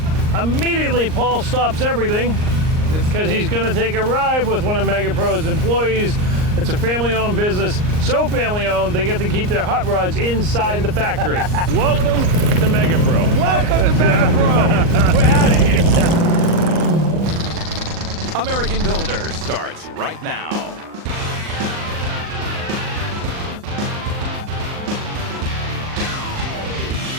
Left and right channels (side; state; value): left; late; 38 ms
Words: immediately Paul stops everything because he's going to take a ride with one of MEGAPRO's employees. It's a family-owned business, so family-owned they get to keep their hot rods inside the factory. Welcome to MEGAPRO. Welcome to MEGAPRO. We're out of here. American Builder starts right now.